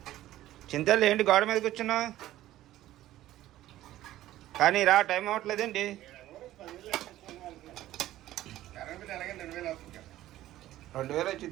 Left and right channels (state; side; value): quieter; left; 14.4 dB